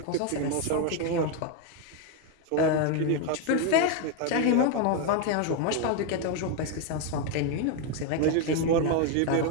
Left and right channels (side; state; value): both; different; correlation 0.01